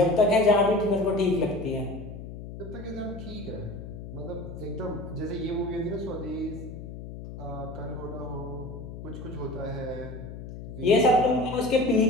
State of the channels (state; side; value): noise; left; hum, 11 dB below the sound